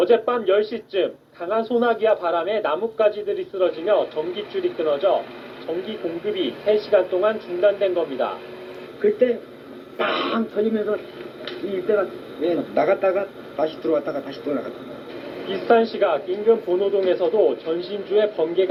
10시쯤 강한 소나기와 바람에 나뭇가지들이 쓰러지며 전기줄이 끊어져 전기 공급이 3시간 동안 중단된 겁니다. 그때 빵 터지면서 이때가 나갔다가 다시 들어왔다가 다시 또 나갔다. 비슷한 시각 인근 본호동에서도 전신주에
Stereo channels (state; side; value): identical; both; correlation 1.00